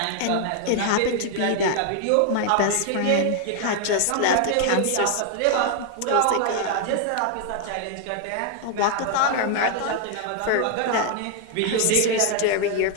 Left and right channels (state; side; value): different; both; correlation 0.01